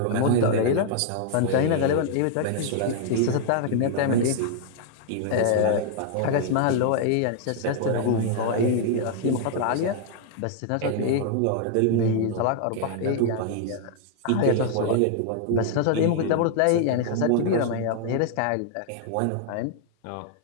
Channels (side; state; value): both; different; correlation 0.00